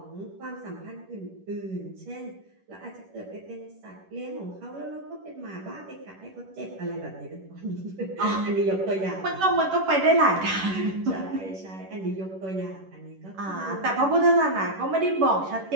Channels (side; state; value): left; late; 10 ms